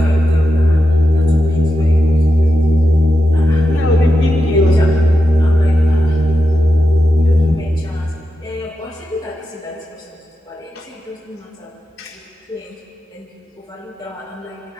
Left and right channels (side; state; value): both; normal; correlation 0.89